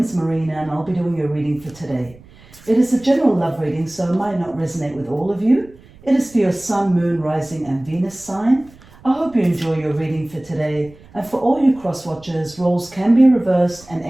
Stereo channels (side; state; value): right; noise; rumble, 24 dB below the sound